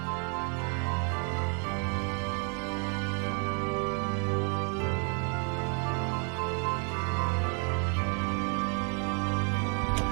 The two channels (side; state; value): left; quieter; 38.1 dB